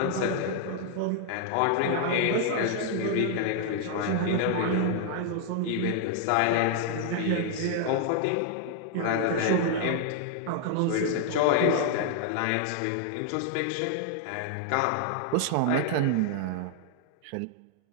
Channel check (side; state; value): both; different; correlation 0.00